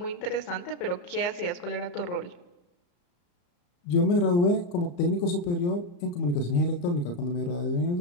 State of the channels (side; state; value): right; late; 34 ms